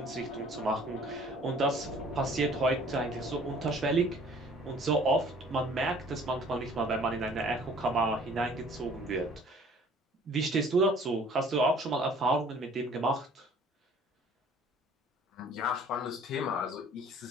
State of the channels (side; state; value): both; normal; correlation 0.53